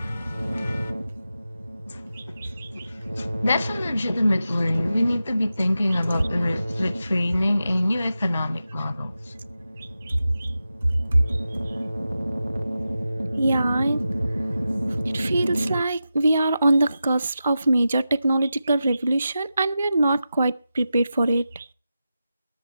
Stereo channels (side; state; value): both; inverted; correlation -0.91